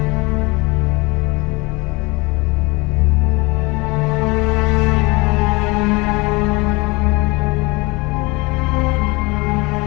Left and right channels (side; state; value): right; quieter; 25.3 dB